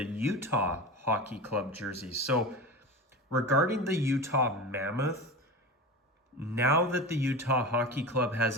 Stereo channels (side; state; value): both; normal; correlation 0.27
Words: Utah Hockey Club jerseys. So regarding the Utah Mammoth, now that the Utah Hockey Club has